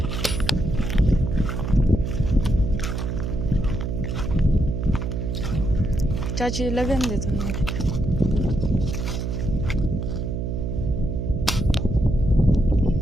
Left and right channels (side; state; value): right; noise; hum, 2 dB below the sound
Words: चाची लगन दे तुमने।